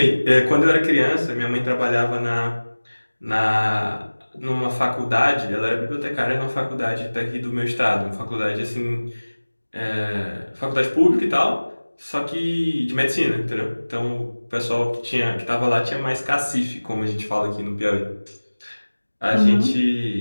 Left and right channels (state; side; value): inverted; both; correlation -1.00